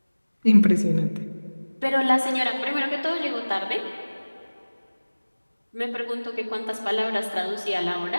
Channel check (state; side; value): inverted; both; correlation -1.00